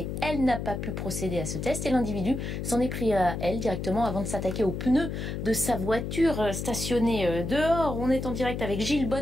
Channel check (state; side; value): noise; left; hum, 4 dB below the sound